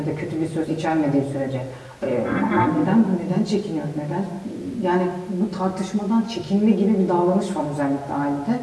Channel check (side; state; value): both; identical; correlation 1.00